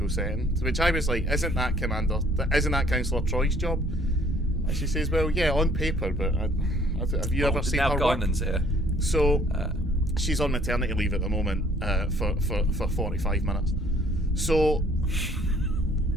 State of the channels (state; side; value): normal; both; correlation 0.60